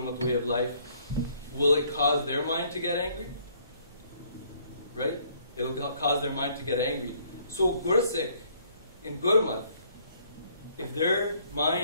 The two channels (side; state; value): both; inverted; correlation -0.64